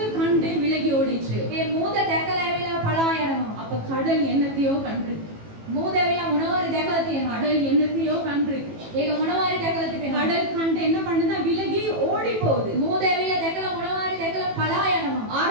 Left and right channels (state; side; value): late; left; 18 ms